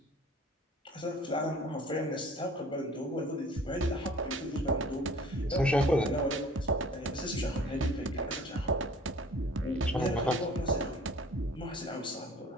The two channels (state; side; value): normal; both; correlation 0.50